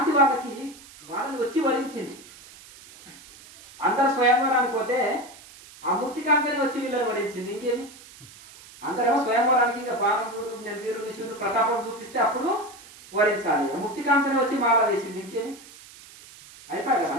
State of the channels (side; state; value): right; noise; hiss, 20 dB below the sound